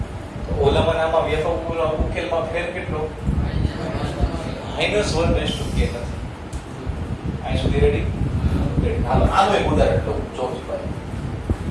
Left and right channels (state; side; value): identical; both; correlation 1.00